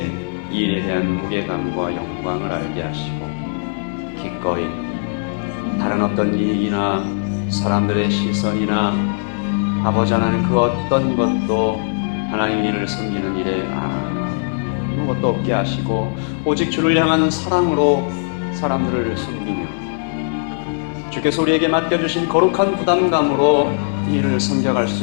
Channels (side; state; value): right; silent; digital silence